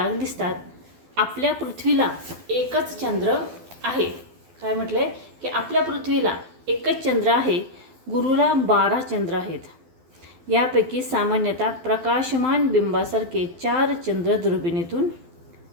दिसतात. आपल्या पृथ्वीला एकच चंद्र आहे. काय म्हटलंय की आपल्या पृथ्वीला एकच चंद्र आहे. गुरुला 12 चंद्र आहेत. यापैकी सामान्यतः प्रकाशमान बिंबासारखे 4 चंद्र दुर्बिणीतून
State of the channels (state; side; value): late; left; 12 ms